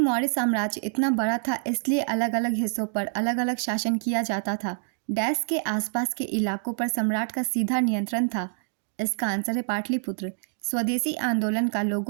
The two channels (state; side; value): silent; left; digital silence